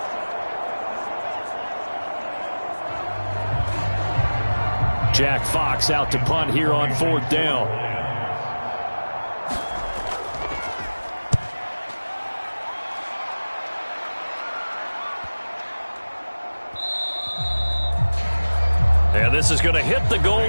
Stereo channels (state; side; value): inverted; both; correlation -1.00